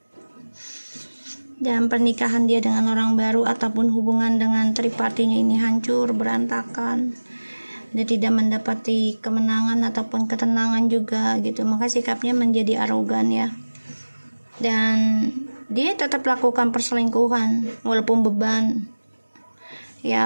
Dan pernikahan dia dengan orang baru ataupun hubungan dengan tripartinya ini hancur, berantakan. Dia tidak mendapati kemenangan ataupun ketenangan juga gitu. Maka sikapnya menjadi arogan ya. Dan dia tetap lakukan perselingkuhan walaupun beban.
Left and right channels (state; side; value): inverted; both; correlation -1.00